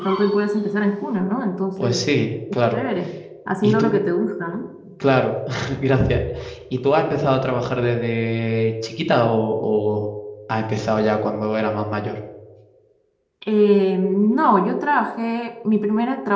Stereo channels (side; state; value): both; identical; correlation 1.00